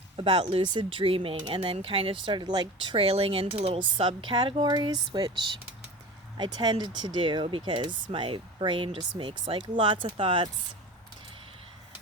about lucid dreaming, and then kind of started like trailing into little subcategories, which I tended to do because my brain just makes like lots of thoughts.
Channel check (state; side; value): normal; both; correlation 0.34